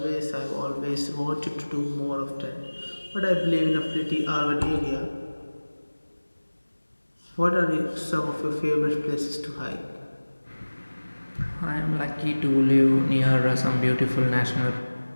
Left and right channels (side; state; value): both; inverted; correlation -1.00